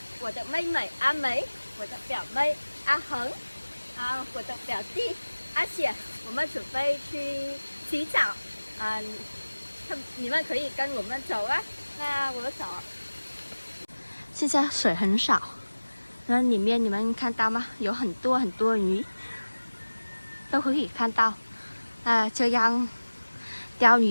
我的妹妹阿梅、我的表妹阿恒、我的表弟阿雪，我们准备去洗澡。你们可以跟我们走啊。那我走。现在水很少，那里面你们看到吗？有很多鱼，都可以看到。这样钓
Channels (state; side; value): inverted; both; correlation -1.00